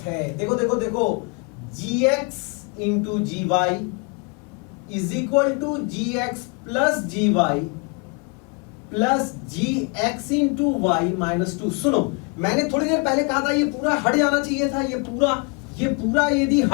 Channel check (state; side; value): quieter; right; 32.1 dB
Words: है. देखो देखो देखो, gx into g y is equal to gx plus g y plus gx into y minus 2. सुनो, मैंने थोड़ी देर पहले कहा था ये पूरा हट जाना चाहिए था, ये पूरा यदि